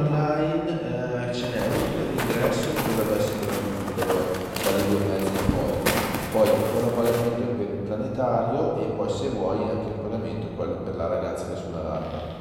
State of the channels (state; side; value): identical; both; correlation 1.00